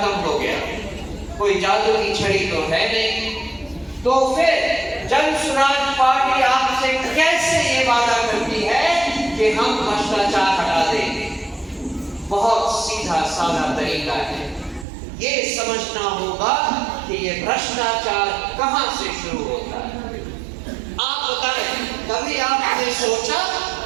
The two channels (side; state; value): left; drops out; at 14.9 s